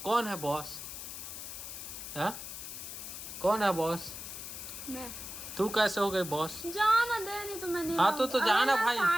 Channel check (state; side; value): noise; left; hiss, 9 dB below the sound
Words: कौन है बॉस? हाँ कौन है बॉस? मैं। तू कैसे हो गई बॉस? जाना दे नहीं तो मैं नहीं हाँ तो जाना अरे भाई।